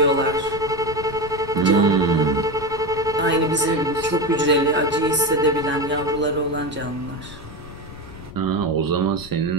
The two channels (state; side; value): noise; left; rumble, 16 dB below the sound